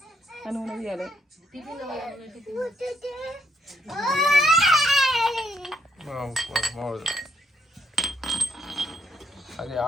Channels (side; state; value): both; normal; correlation 0.74